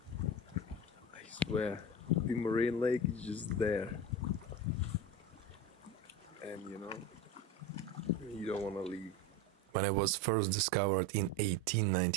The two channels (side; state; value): both; normal; correlation 0.25